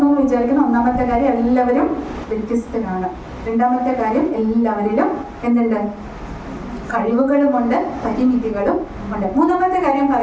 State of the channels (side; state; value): both; identical; correlation 1.00